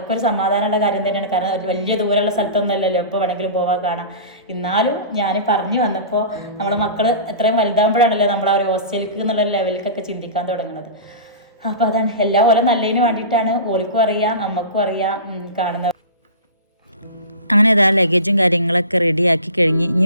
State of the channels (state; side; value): inverted; both; correlation -0.34